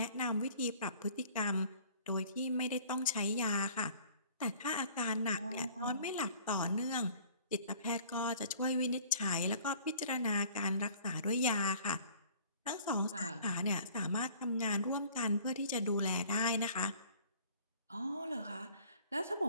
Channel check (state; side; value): inverted; both; correlation -0.52